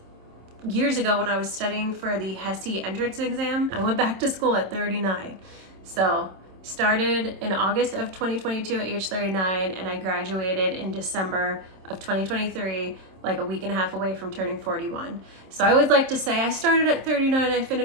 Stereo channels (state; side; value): late; left; 27 ms